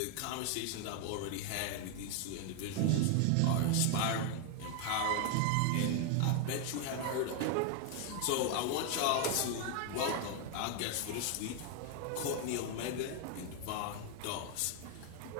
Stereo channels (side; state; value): both; different; correlation 0.01